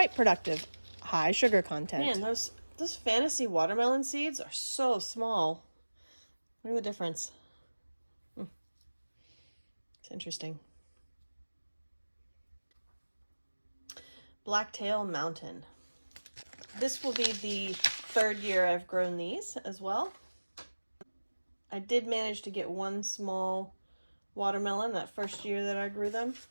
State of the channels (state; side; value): inverted; both; correlation -1.00